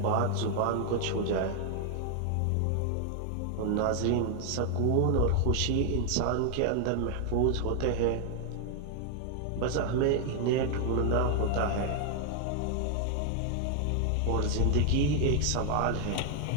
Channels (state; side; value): different; both; correlation 0.00